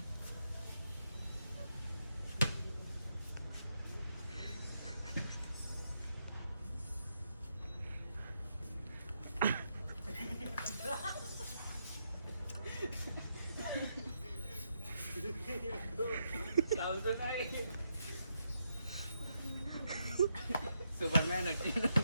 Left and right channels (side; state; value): both; inverted; correlation -0.81